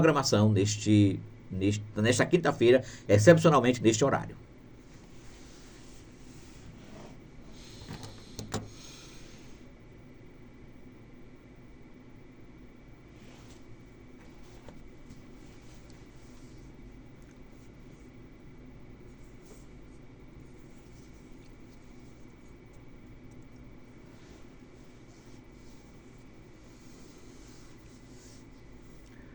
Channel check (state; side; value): identical; both; correlation 1.00